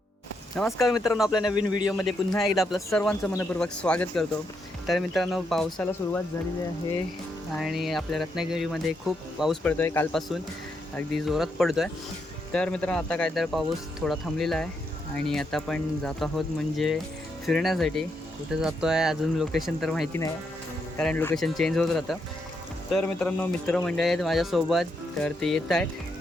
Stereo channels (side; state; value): both; normal; correlation 0.79